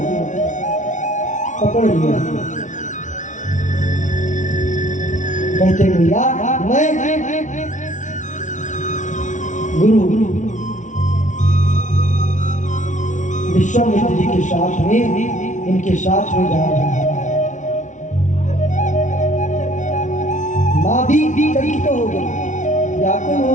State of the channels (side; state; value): right; late; 0.36 ms